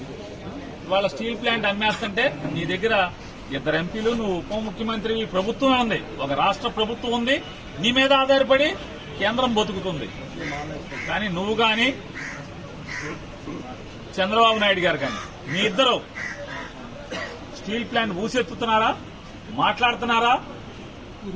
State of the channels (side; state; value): both; identical; correlation 1.00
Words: వాళ్ళ స్టీల్ ప్లాంట్ అమ్మేస్తుంటే నీ దగ్గర ఇద్దరు ఎంపీలు, నువ్వు ఉప ముఖ్యమంత్రి, ప్రభుత్వం ఉంది, ఒక రాష్ట్ర ప్రభుత్వం ఉంది, నీ మీద ఆధారపడి కేంద్రం బతుకుతుంది. కానీ నువ్వు కానీ చంద్రబాబు నాయుడు గారు కానీ మీ ఇద్దరు స్టీల్ ప్లాంట్ ఊసెత్తుతున్నారా, మాట్లాడుతున్నారా?